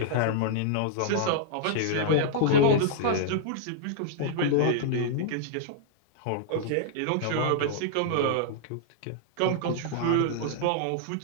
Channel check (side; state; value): both; different; correlation -0.01